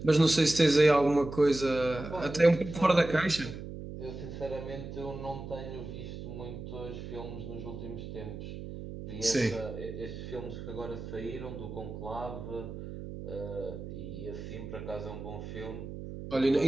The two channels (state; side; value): noise; right; hum, 9 dB below the sound